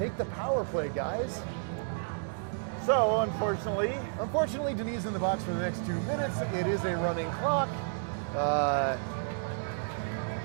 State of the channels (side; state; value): left; silent; digital silence